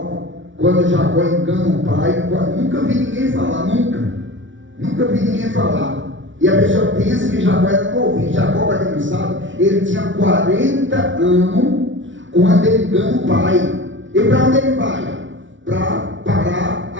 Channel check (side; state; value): left; late; 0.56 ms